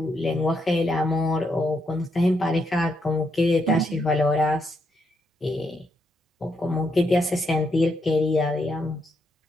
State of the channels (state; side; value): normal; both; correlation 0.78